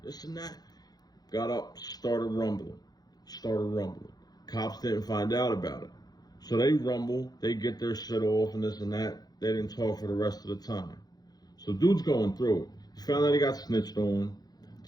This and that." Got up, started rumbling. Cops didn't find out about it. So they rumble, they get their shit off and this and that. They didn't talk for the rest of the time. So dude's going through it. He found out he got snitched on.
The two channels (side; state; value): right; late; 0.19 ms